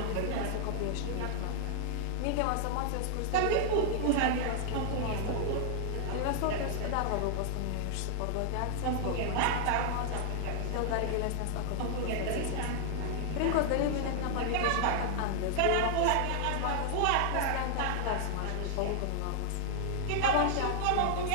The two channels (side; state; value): both; different; correlation 0.00